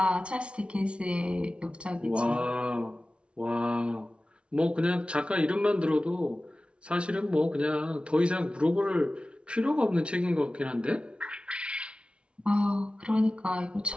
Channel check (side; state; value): left; late; 0.059 ms